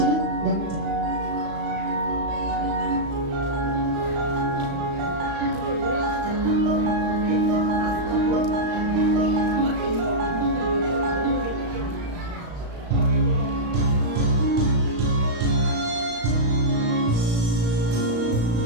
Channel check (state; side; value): late; left; 35 ms